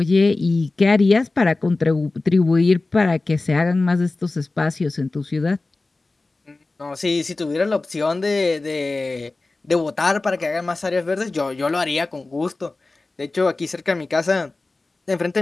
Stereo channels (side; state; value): right; quieter; 3.3 dB